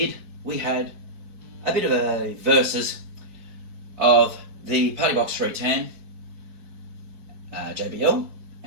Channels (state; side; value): late; left; 4.6 ms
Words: we had a bit of a versus of the Partybox 310 JBL